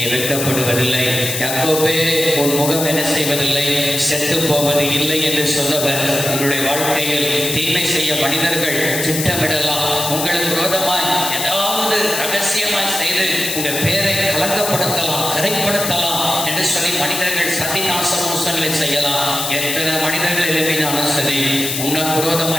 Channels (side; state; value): left; noise; hiss, 3 dB below the sound